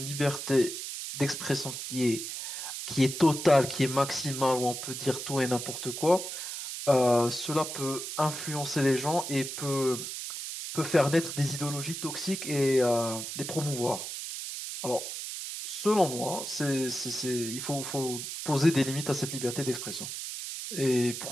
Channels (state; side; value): noise; right; hiss, 6 dB below the sound